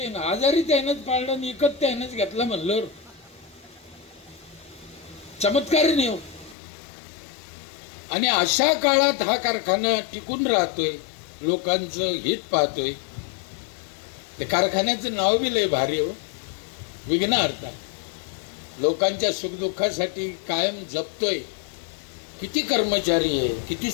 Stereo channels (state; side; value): drops out; right; at 6.6 s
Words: ना. आजारी त्यानंच पाळलं आणि इकत त्यानंच घेतला म्हणलं, चमत्कार नाही हो. आणि अशा काळात हा कारखाना टिकून राहतोय, लोकांचं हित पाहतोय. ते कारखान्याचं नाव बी लय भारी हो, विघ्नहर्ता. लोकांच्या सुखदुःखासाठी कायम जपतोय. किती कर्मचारी आहे, किती